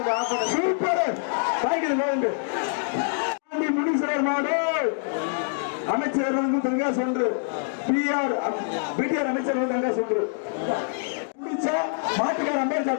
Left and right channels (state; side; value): silent; right; digital silence